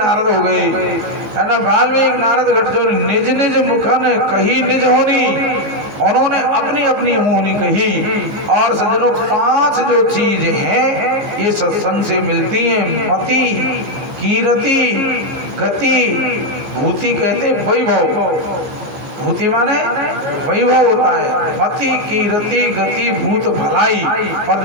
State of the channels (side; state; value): left; late; 15 ms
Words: हो गए, है ना। वाल्मीकि नारद घट जो निज निज मुखन कही निज होनी, उन्होंने अपनी अपनी होनी कही। और सज्जनों, 5 जो चीज हैं ये सत्संग से मिलती हैं। मति, कीरति, गति, भूति कहते वैभव। भूति माने वैभव होता है। मति, कीरति, गति, भूत, भलाई। और